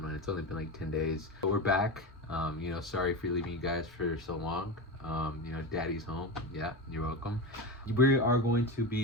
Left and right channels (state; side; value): normal; both; correlation 0.21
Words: one. It's only been like 10 days. But we're back. Sorry for leaving you guys for so long. Daddy's home. Yeah, you're welcome. We are going to